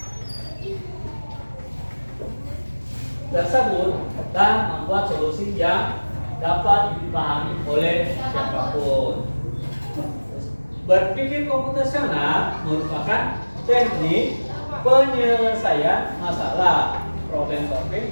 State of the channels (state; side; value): inverted; both; correlation -1.00